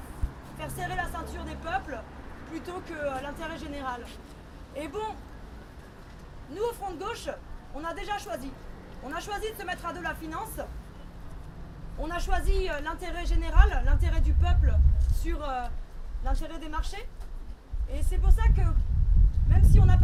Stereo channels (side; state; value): both; identical; correlation 1.00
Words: faire serrer la ceinture des peuples plutôt que l'intérêt général. Et bon, nous au Front de Gauche, on a déjà choisi. On a choisi de se mettre à dos la finance, on a choisi l'intérêt général, l'intérêt du peuple sur l'intérêt des marchés. Et c'est pour ça que, même si on n'a